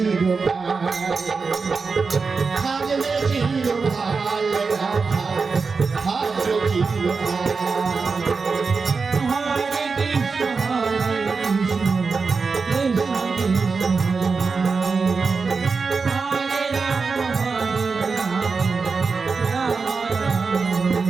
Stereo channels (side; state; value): left; quieter; 4.7 dB